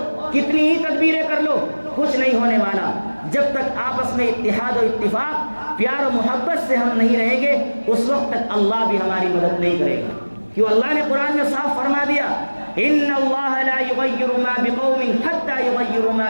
کتنی ہی تدبیریں کر لو کچھ نہیں ہونے والا۔ جب تک آپس میں اتحاد و اتفاق، پیار و محبت سے ہم نہیں رہیں گے اس وقت تک اللہ بھی ہماری مدد نہیں کرے گا، کیوں اللہ نے قرآن میں صاف فرما دیا، ان اللہ لا یغیر ما بقوم حتی یغیروا ما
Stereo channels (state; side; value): inverted; both; correlation -1.00